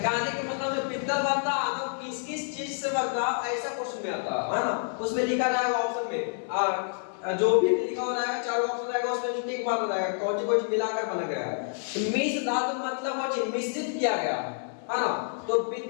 के मतलब जो पित्तल बनता है तो किस किस चीज से बनता है, ऐसा क्वेश्चन में आता है ना। उसमें लिखा रहेगा ऑप्शन में, जो भी लिखा हो रहेगा 4 ऑप्शन रहेगा, उसमें टिक मार रहेगा कौन सी मिलाकर बना गया है। मिश्र धातु मतलब वो मिश्रित किया गया है ना। तो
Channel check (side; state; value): right; silent; 56 dB below the other